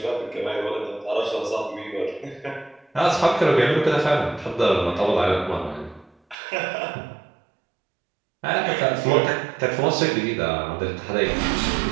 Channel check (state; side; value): drops out; left; at 6.4 s